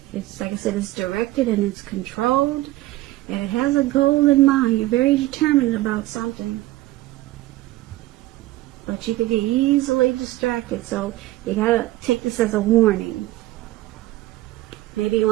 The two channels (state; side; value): quieter; left; 17.1 dB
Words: It's, like I said, it's directed and it's controlled, and it has a goal in mind. You're very determined about something. But you could get easily distracted, so you gotta take this as a warning. Maybe you